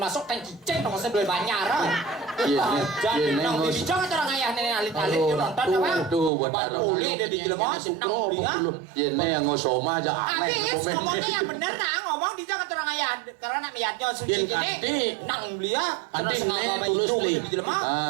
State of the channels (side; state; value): left; drops out; at 6.3 s